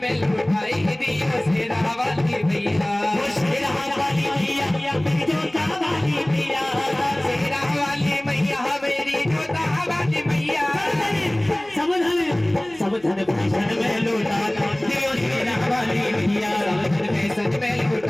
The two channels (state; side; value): noise; left; hum, 28 dB below the sound